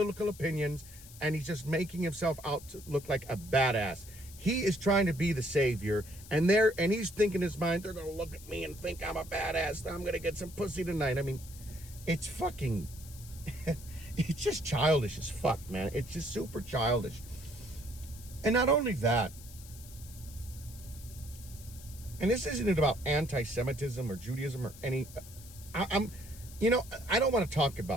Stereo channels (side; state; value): left; noise; hiss, 18 dB below the sound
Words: opinions, and he's just making himself out to look like a badass. He is trying to be the savior, and he's thinking in his mind, they're going to look at me and think I'm a badass. I'm going to get some pussy tonight. I mean, it's fucking, it's just childish as fuck, man. It's just super childish. And not only that, and this isn't about anti-Semitism or Judaism or any, I don't want to talk